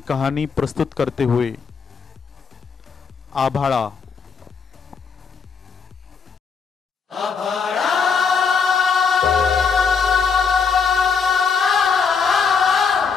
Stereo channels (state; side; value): quieter; right; 5.7 dB